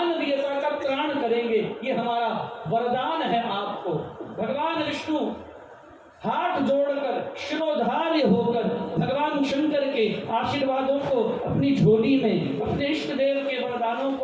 का त्राण करेंगे। ये हमारा वरदान है आपको। भगवान विष्णु हाथ जोड़कर शिरोधार्य होकर भगवान शंकर के आशीर्वादों को अपनी झोली में, अपने इष्ट देव के वरदानों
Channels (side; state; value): both; identical; correlation 1.00